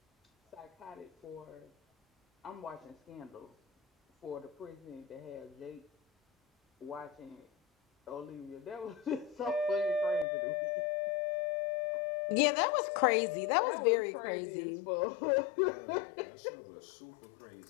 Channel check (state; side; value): drops out; right; at 10.2 s